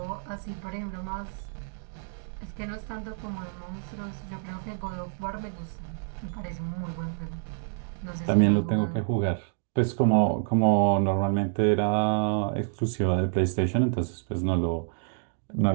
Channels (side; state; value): left; silent; digital silence